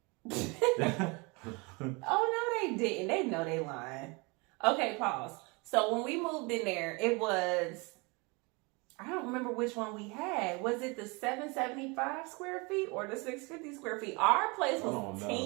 Oh, no, they didn't. They know they lying. Okay, pause. So when we moved in there, it was, I don't remember which one we had. Was it the 775 square feet or the 650 square feet? Our place was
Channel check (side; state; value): left; quieter; 28.2 dB